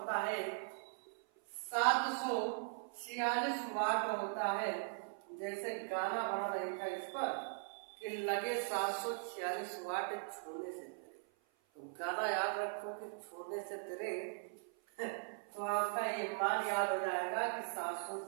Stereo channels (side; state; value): left; silent; 51 dB below the other